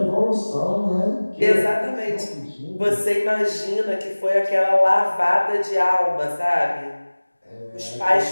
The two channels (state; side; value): inverted; both; correlation -1.00